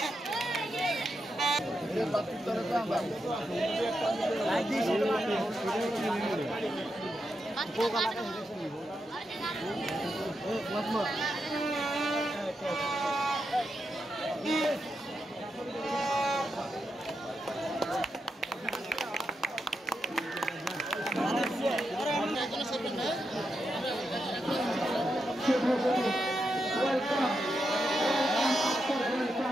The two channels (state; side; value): normal; both; correlation 0.85